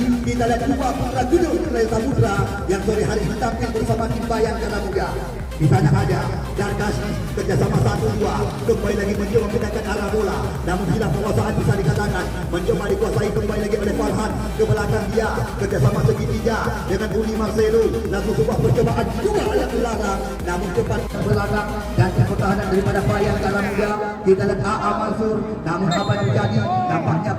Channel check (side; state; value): both; identical; correlation 1.00